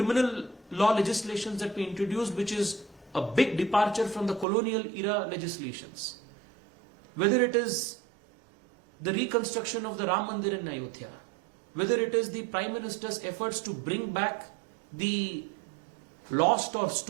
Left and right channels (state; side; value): drops out; left; at 4.5 s